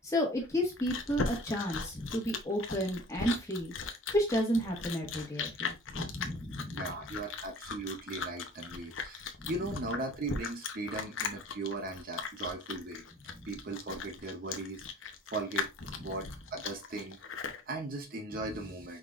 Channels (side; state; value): both; normal; correlation 0.47